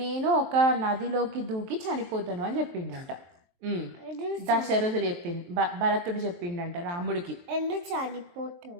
నేను ఒక నదిలోకి దూకి చనిపోతాను అని చెప్పిండంట. దశరథుడు చెప్పింది, భరతుడు చెప్పిండంట రాముడికి. ఎందుకు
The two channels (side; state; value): left; late; 23 ms